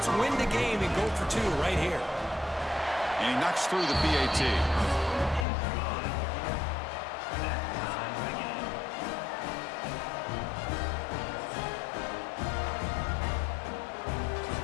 win the game and go for 2 right here. And he knocks through the PAT.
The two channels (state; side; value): drops out; right; at 5.5 s